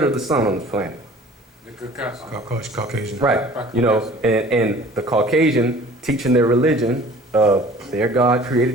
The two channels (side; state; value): both; normal; correlation 0.48